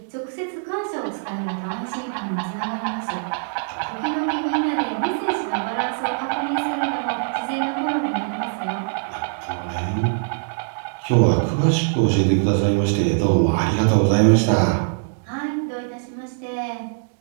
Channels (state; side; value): silent; left; digital silence